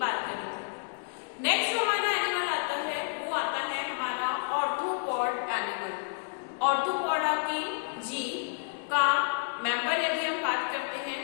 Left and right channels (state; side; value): silent; right; digital silence